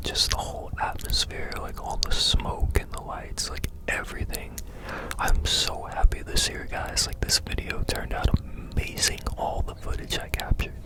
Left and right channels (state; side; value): identical; both; correlation 1.00